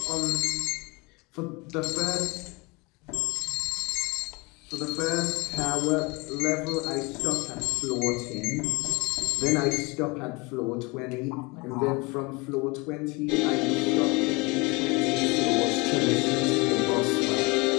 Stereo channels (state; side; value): quieter; right; 27.1 dB